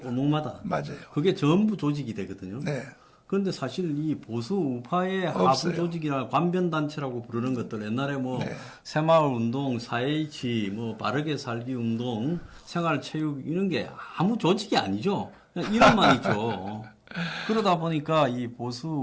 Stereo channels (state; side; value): identical; both; correlation 1.00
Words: 맞아요. 그게 전부 조직이 되거든요. 그런데 사실 이 보수 우파의 하부 조직이나 관변 단체라고 부르는 것들 옛날에 뭐 새마을 운동, 4H, 뭐 바르게 살기 운동, 생활체육 이런 게 아무 조직이 아니죠. 그냥 이름만 있죠. 그러다 보니까 이 보수